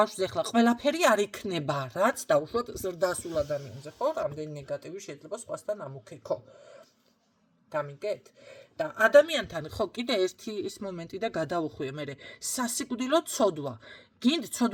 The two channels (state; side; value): identical; both; correlation 1.00